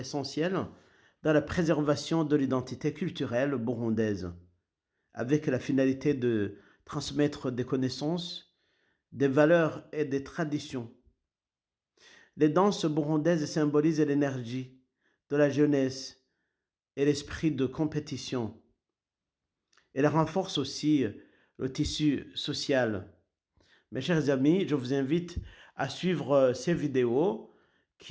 dans la préservation de l'identité culturelle burundaise, avec la finalité de transmettre des connaissances, des valeurs et des traditions. Les danses burundaises symbolisent l'énergie de la jeunesse et l'esprit de compétition. Elles renforcent aussi le tissu social. Mes chers amis, je vous invite à suivre ces vidéos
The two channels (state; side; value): identical; both; correlation 1.00